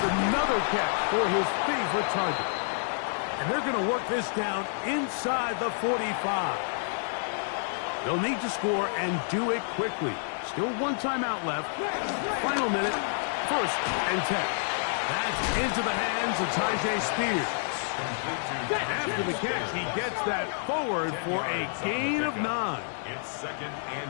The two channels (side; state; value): right; silent; digital silence